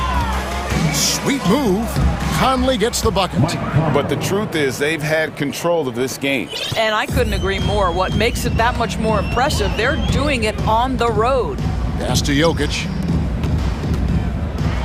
Sweet move. Conley gets the bucket. But the truth is they've had control of this game. And I couldn't agree more. What makes it that much more impressive, they're doing it on the road. Pass to Jokic.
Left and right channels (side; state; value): both; identical; correlation 1.00